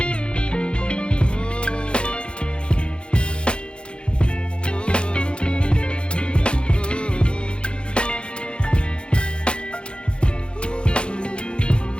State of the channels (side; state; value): right; late; 0.055 ms